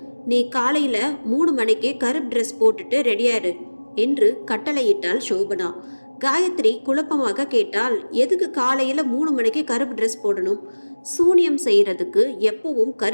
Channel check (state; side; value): inverted; both; correlation -1.00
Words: நீ காலையில் 3 மணிக்கு கருப்பு ட்ரெஸ் போட்டுட்டு ரெடியாரு என்று கட்டளையிட்டாள் சோபனா. காயத்ரி குழப்பமாக கேட்டால், எதுக்கு காலையில் 3 மணிக்கு கருப்பு ட்ரெஸ் போடணும்? சூனியம் செய்கிறதுக்கு எப்பவும்